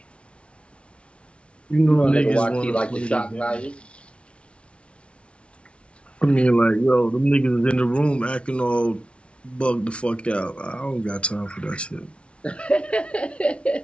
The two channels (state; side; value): late; right; 0.060 ms